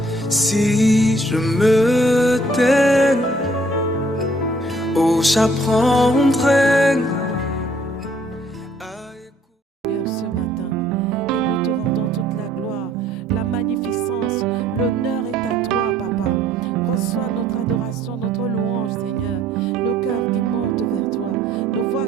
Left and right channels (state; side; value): normal; both; correlation 0.62